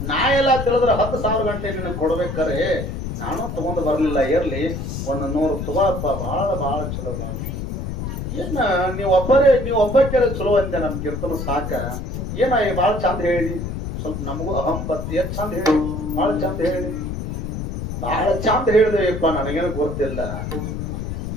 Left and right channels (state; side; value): noise; left; rumble, 5 dB below the sound